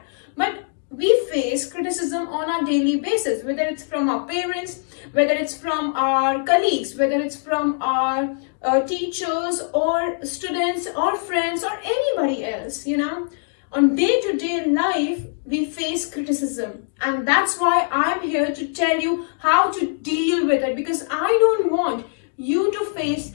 But we face criticism on a daily basis, whether it's from our parents, whether it's from our colleagues, whether it's from our teachers or students or friends or anybody else. On day-to-day life, we face criticism, and that's why I'm here to tell you how to deal with it, because I don't want you to face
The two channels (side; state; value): right; silent; digital silence